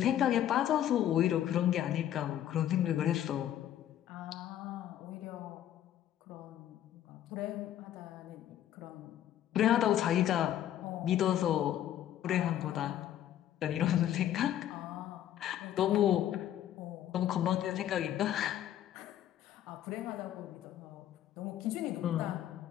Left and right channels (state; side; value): quieter; right; 11.5 dB